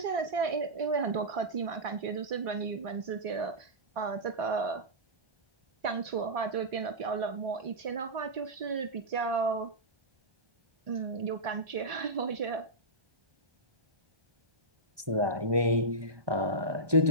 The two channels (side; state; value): left; late; 1.2 ms